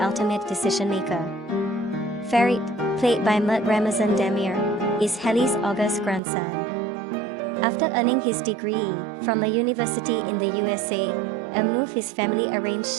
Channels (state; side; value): drops out; left; at 6.2 s